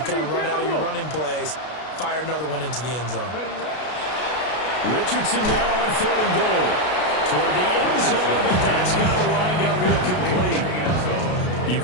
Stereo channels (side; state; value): right; late; 33 ms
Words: kind of run out of your running plays, fire another one into the end zone. Richardson now on 3rd and goal. Toward the end zone, but that's going to wind up incomplete. You